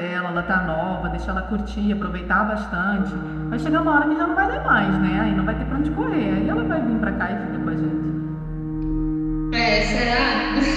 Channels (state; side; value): identical; both; correlation 1.00